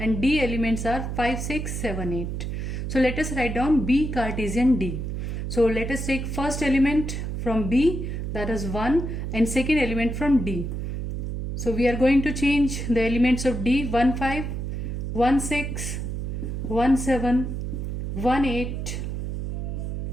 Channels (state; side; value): noise; right; hum, 3 dB below the sound